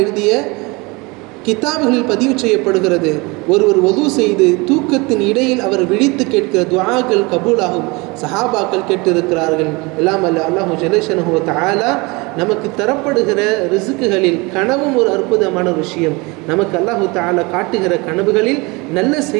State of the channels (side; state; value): left; quieter; 26.1 dB